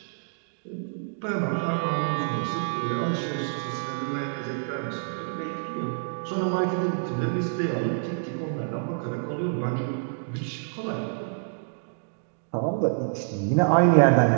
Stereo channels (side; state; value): left; silent; digital silence